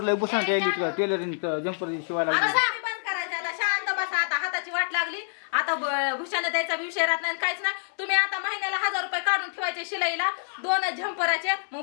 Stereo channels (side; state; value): right; silent; digital silence